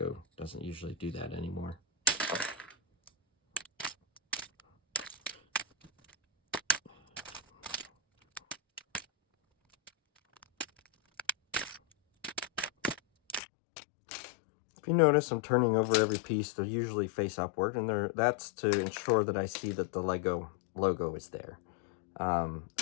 doesn't usually do that anymore. If you notice, I'm turning over every piece. They're usually face upward, and that's to ensure that I see that the Lego logo is there.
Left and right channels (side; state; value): right; drops out; at 13.4 s